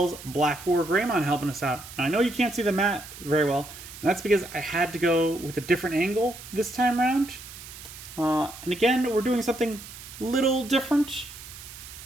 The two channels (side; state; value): right; noise; hiss, 15 dB below the sound